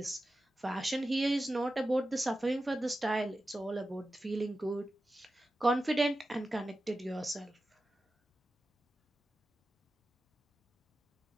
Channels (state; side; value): normal; both; correlation 0.93